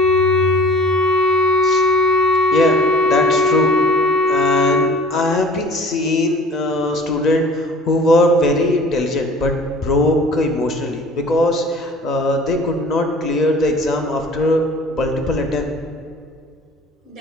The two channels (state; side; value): normal; both; correlation 0.46